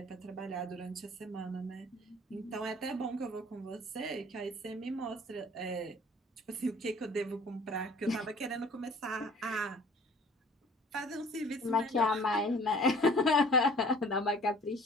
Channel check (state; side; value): normal; both; correlation 0.51